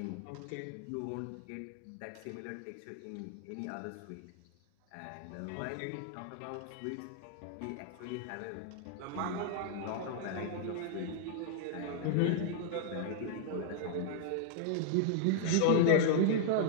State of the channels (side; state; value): both; different; correlation -0.01